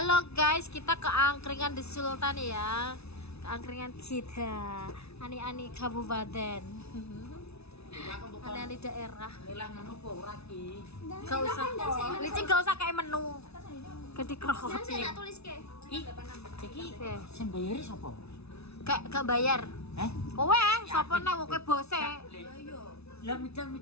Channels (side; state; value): right; late; 0.80 ms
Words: guys, kita ke angkringan di Sultan ya. Ke angkringan kita. Ani-ani kabupaten. Ani-ani daerah. Gak usah. Licin gak usah kayak menu. Gede krohot. Jangan saya tulis ke. Iki sing bayari sapa? Gak bayar. Kowe sapa nang kowe bose? Lah